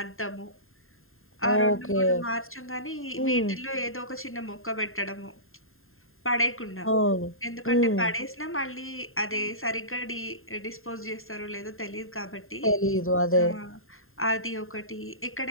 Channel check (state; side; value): late; right; 0.61 ms